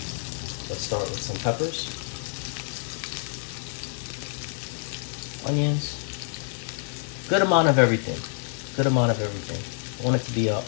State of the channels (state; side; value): silent; right; digital silence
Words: Let's start with some peppers, onions, good amount of everything. Good amount of everything. I want it to be a